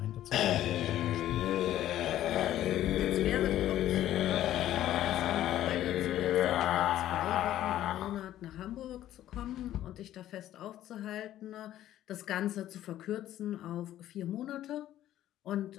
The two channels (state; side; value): quieter; right; 12.8 dB